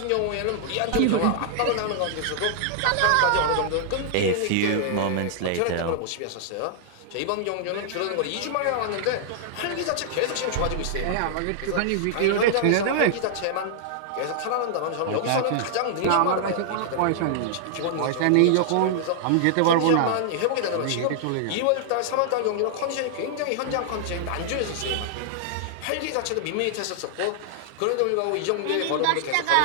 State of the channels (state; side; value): different; both; correlation -0.01